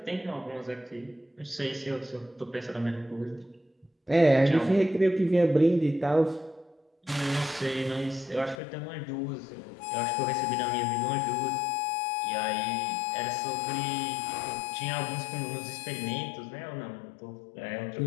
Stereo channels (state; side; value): drops out; right; at 8.6 s